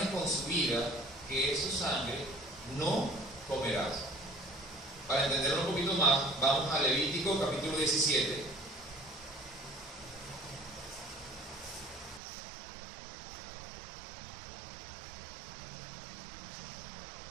con su vida, que es su sangre, no comerás. Para entenderlo un poquito más, vamos a Levítico capítulo 17.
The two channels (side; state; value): left; drops out; at 12.2 s